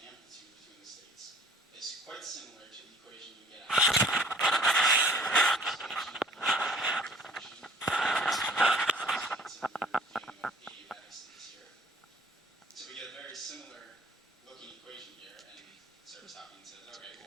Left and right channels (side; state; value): both; normal; correlation 0.52